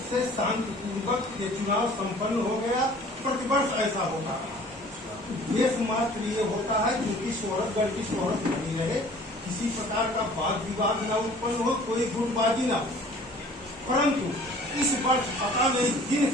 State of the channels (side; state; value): both; normal; correlation 0.50